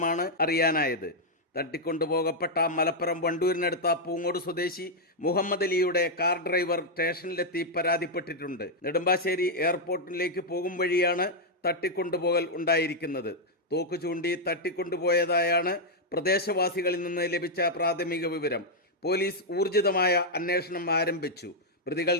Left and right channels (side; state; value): both; normal; correlation -0.03